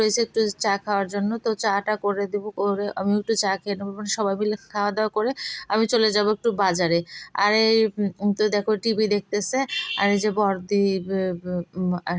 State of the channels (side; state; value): both; identical; correlation 1.00